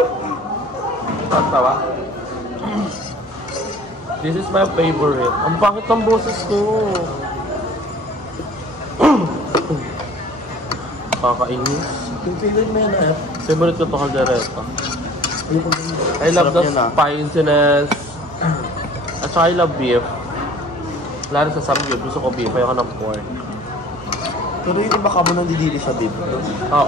Tawa. This is my favorite. Ang pangit ng boses ko. Kakainis. Yung favorite mo yan Favorite ko ito kaldereta. I love the spiciness. At saka I love beef. Lalo sa samgyup, gusto ko beef, ayoko ng pork. Pero yung iba ka mo nandidili sa beef.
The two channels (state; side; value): normal; both; correlation 0.48